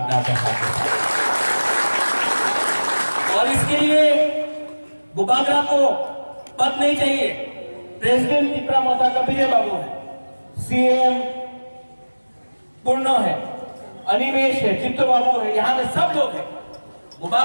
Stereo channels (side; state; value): both; inverted; correlation -1.00